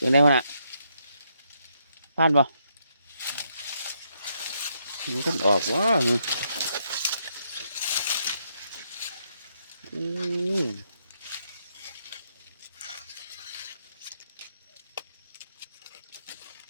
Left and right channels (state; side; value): inverted; both; correlation -0.77